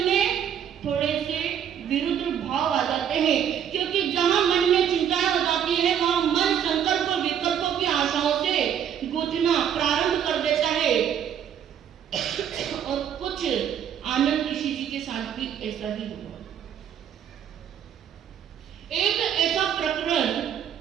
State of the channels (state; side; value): quieter; left; 9.0 dB